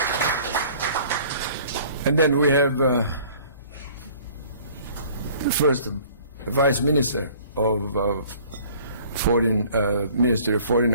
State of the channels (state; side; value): inverted; both; correlation -0.52